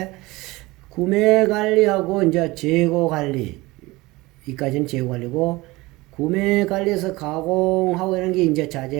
구매 관리하고 이제 재고 관리, 이까지는 재고 관리고, 구매 관리에서 가공하고 이런 게 이제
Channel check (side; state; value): left; quieter; 21.3 dB